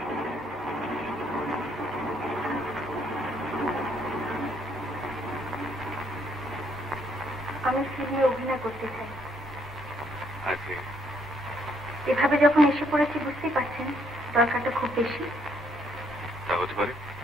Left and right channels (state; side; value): normal; both; correlation 0.70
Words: আমি ফিল্মে অভিনয় করতে চাই। আগে এভাবে যখন এসে পড়েছি বুঝতেই পারছেন দরকারটা খুব বেশি। তা হতে পারে।